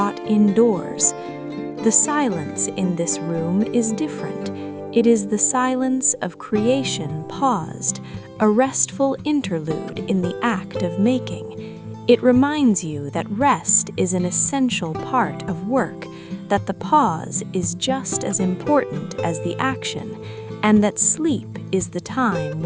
indoors. The silence in this room is different. It is the silence of creation paused, a restful interlude in the act of making. It reminds you that rest is an essential part of work, that the pause is just as important as the action, and that sleep is the time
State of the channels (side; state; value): both; identical; correlation 1.00